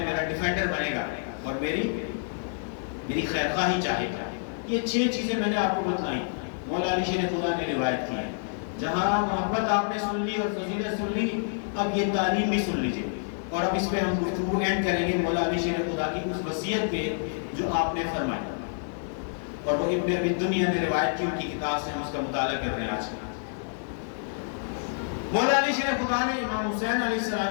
میرا ڈیفینڈر بنے گا اور میری خیر خواہی چاہے گا۔ یہ 6 چیزیں میں نے آپ کو بتلائیں، مولا علی شیر خدا نے روایت کی ہے۔ جہاں محبت آپ نے سن لی اور فضیلت سن لی، اب یہ تعلیم بھی سن لیجئے، اور اب اس پہ ہم گفتگو اینڈ کریں گے مولا علی شیر خدا کی اس وصیت پہ جو آپ نے فرمائی، اور وہ ابن ابی دنیا نے روایت کی، ان کی کتاب سے ہم اس کا مطالعہ کر رہے ہیں آج۔ مولا علی شیر خدا نے امام حسین علیہ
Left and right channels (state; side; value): silent; right; digital silence